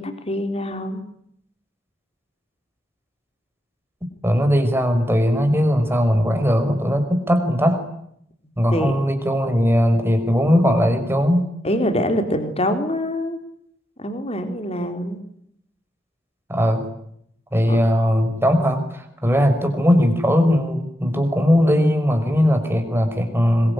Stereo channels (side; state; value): both; normal; correlation 0.86